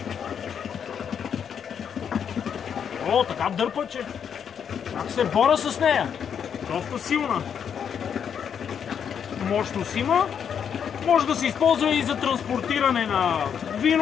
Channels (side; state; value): right; quieter; 7.8 dB